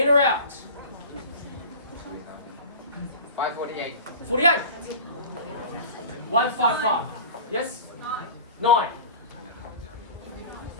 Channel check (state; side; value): inverted; both; correlation -0.37